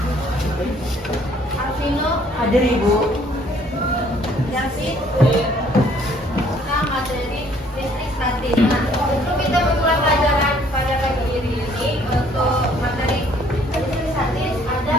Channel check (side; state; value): both; normal; correlation 0.61